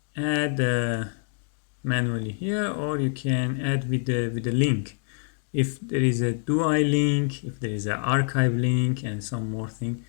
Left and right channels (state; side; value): silent; right; 61 dB below the other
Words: add manually here, or you can add with the link. If there is a DUI link, if there is an archive link, and some more thing,